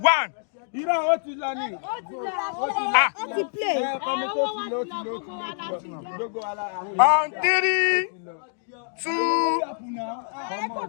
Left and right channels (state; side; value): silent; right; digital silence